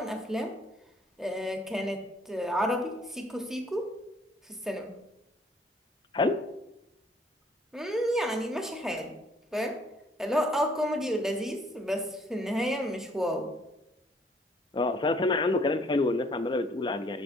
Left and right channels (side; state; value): both; normal; correlation 0.62